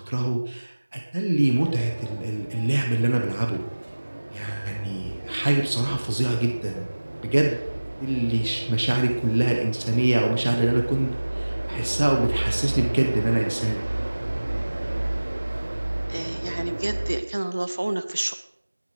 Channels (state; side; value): inverted; both; correlation -1.00